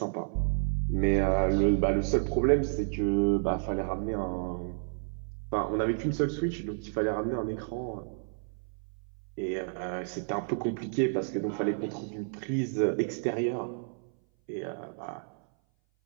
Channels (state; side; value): silent; left; 57 dB below the other